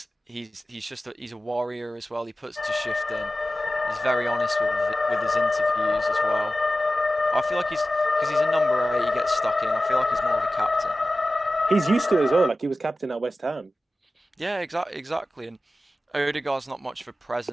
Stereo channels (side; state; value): both; normal; correlation 0.95